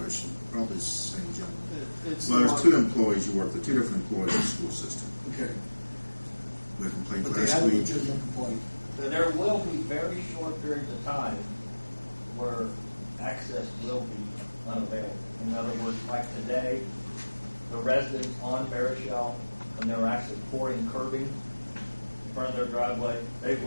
Probably it's the same gentleman. It's Well, there's two employees you work with, two different employees in the school system. Okay. We complained But they last have a week. legitimate complaint. There will be very short periods of time where access will be unavailable. In other words, like today, the residents on Barishel, when they're actually pouring curbing in front of their driveway, they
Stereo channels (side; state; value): both; inverted; correlation -1.00